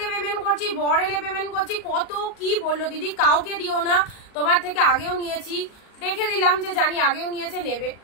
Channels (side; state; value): right; late; 38 ms